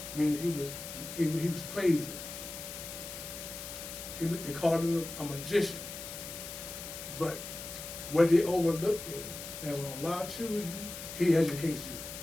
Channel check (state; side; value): noise; left; hiss, 9 dB below the sound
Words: meaning he was crazy. They called him a magician. But what they overlook is that when Allah chooses you, He educates you.